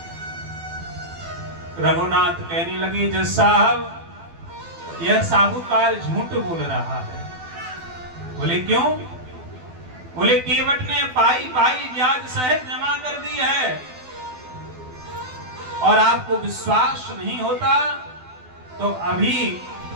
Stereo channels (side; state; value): left; late; 12 ms